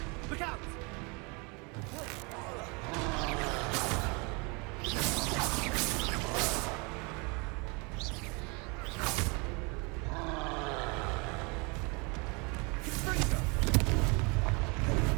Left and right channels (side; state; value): left; quieter; 30.4 dB